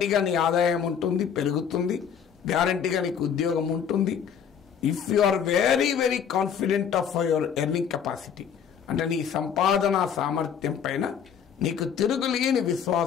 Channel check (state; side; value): quieter; right; 7.7 dB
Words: నీ ఆదాయం ఉంటుంది, పెరుగుతుంది, గ్యారంటీగా నీకు ఉద్యోగం ఉంటుంది. If you are very very confident of your earning capacity, అంటే నీ సంపాదన సామర్థ్యం పైన నీకు తిరుగులేని